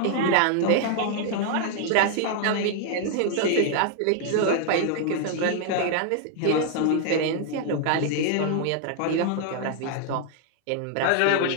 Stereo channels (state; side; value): different; both; correlation 0.00